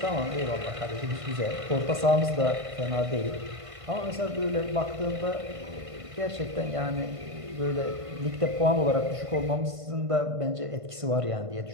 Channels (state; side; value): late; left; 1.5 ms